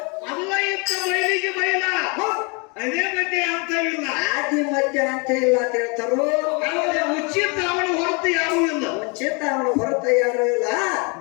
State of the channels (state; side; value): quieter; right; 32.2 dB